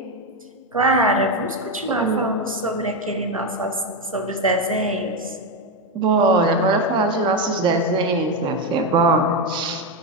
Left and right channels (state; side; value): normal; both; correlation 0.09